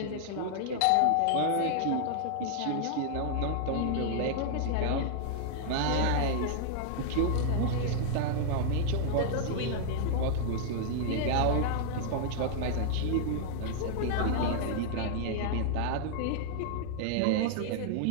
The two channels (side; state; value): both; different; correlation -0.01